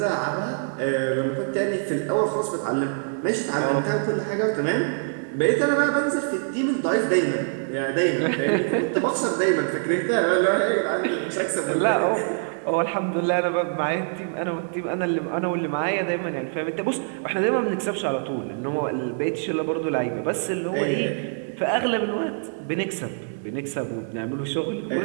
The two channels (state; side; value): silent; left; digital silence